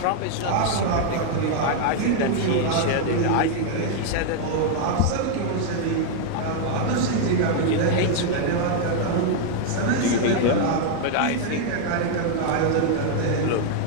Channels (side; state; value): both; different; correlation 0.00